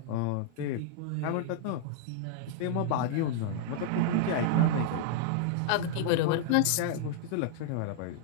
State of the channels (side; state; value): both; different; correlation -0.01